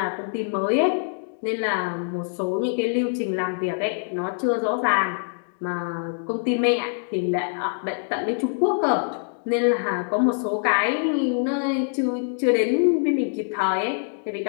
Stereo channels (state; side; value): silent; right; digital silence